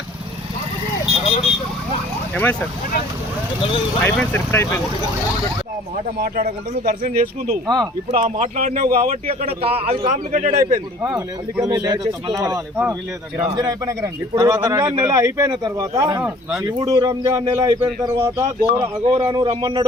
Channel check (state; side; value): normal; both; correlation 0.52